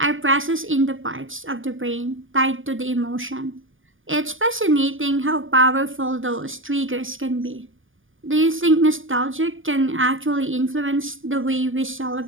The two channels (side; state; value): left; late; 0.58 ms